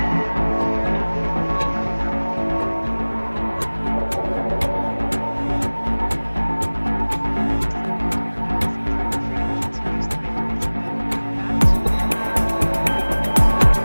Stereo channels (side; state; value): both; inverted; correlation -1.00